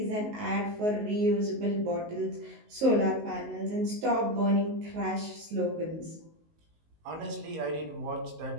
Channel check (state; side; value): late; left; 19 ms